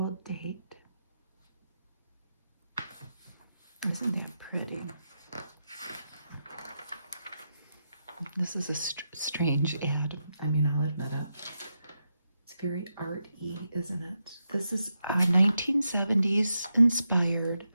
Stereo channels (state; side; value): inverted; both; correlation -0.86